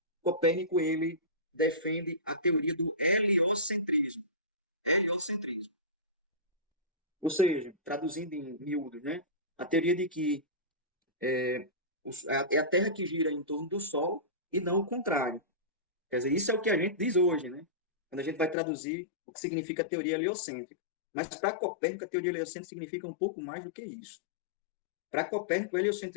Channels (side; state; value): right; drops out; at 18.6 s